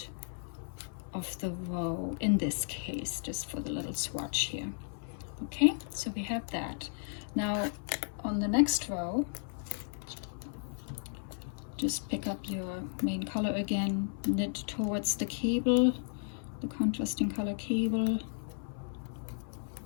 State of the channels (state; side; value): silent; right; 55 dB below the other